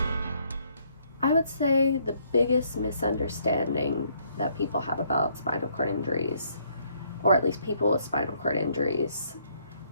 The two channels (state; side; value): inverted; both; correlation -0.69